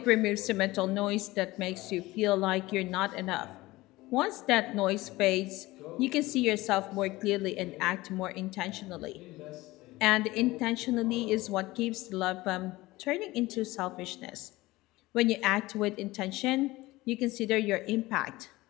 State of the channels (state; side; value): quieter; right; 19.3 dB